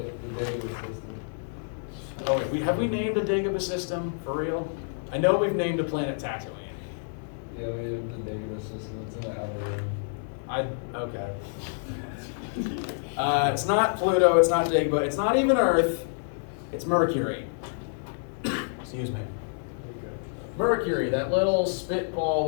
Dagobah system. Oh, have we named a Dagobah system for real? I know we've named a planet Tatooine. Yeah, we have the Dagobah system. It's in the outer rim. Okay. It's not Pluto, it's not Dagobah, it's not even Earth, it's Mercury. Excuse me. Okay. Mercury, that little spitball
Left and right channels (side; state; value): right; silent; 59 dB below the other